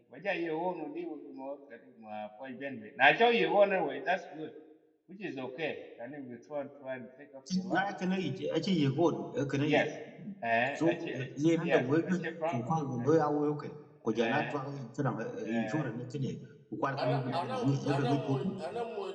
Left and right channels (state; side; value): identical; both; correlation 1.00